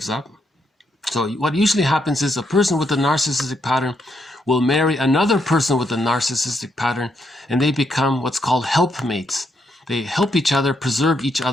up. So what usually happens is a person with a narcissistic pattern will marry another person with a narcissistic pattern, and they become what's called helpmates. They help each other preserve each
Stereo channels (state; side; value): normal; both; correlation 0.78